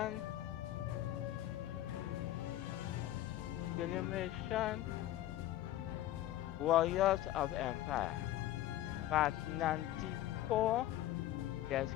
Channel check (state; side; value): quieter; right; 13.8 dB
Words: Warriors of Empire. Part 94. Let's